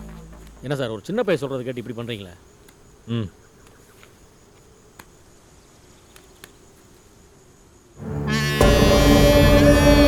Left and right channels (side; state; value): both; identical; correlation 1.00